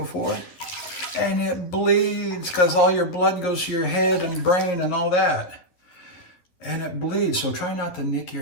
and it bleeds because all your blood goes to your head and brain and all that. And it bleeds, so try not to nick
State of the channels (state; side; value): late; right; 11 ms